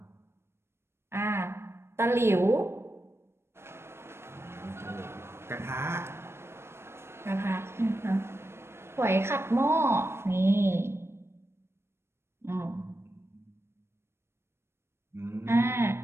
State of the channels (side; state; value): left; late; 0.12 ms